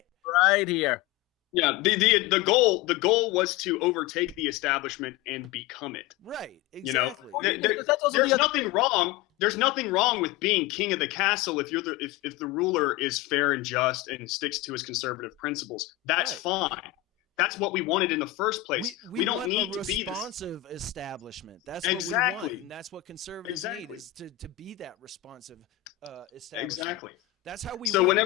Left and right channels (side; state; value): right; quieter; 15.6 dB